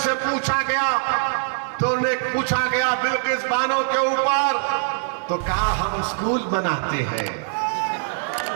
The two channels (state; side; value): silent; left; digital silence